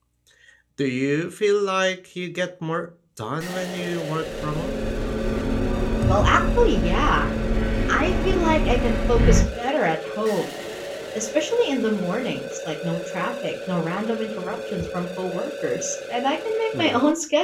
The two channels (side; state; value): both; identical; correlation 1.00